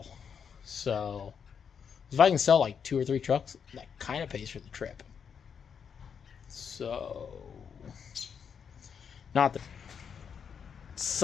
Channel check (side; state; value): right; quieter; 7.0 dB